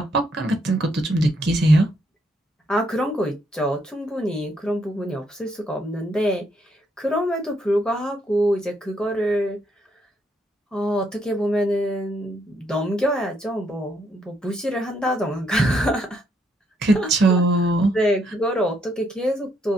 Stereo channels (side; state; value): both; normal; correlation 0.74